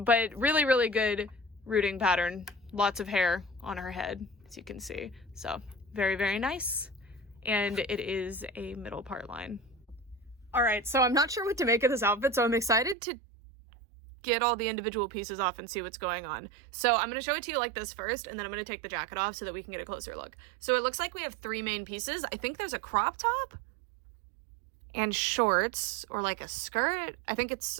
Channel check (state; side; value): drops out; left; at 13.0 s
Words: really, really good rooting pattern. Lots of hair on her head, as you can see. So very, very nice. And it is a middle part line. All right, so I'm not sure what to make of this outfit, so I'm excited to get all the individual pieces off and see what's going on. So I'm going to show it to you like this first, and then I'm going to take the jacket off so that we can get a closer look. So it looks like we have three main pieces. I think there's a crop top and shorts, or like a skirt. I think it's